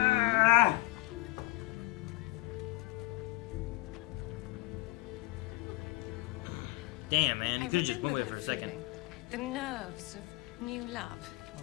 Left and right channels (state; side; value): quieter; right; 19.6 dB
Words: Damn, man. You I could have just went remember away for a that second. feeling. The nerves of new love, or